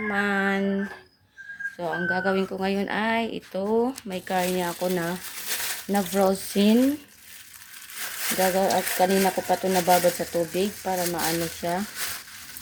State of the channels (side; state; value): both; identical; correlation 1.00